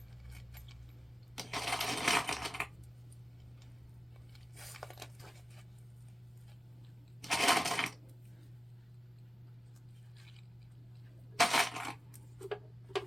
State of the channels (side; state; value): both; normal; correlation 0.96